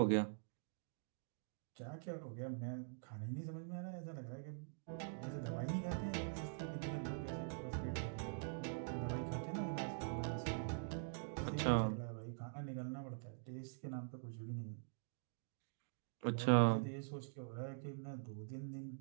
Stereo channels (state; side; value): silent; left; digital silence